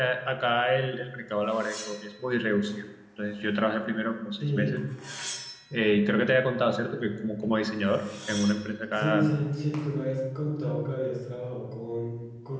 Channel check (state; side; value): identical; both; correlation 1.00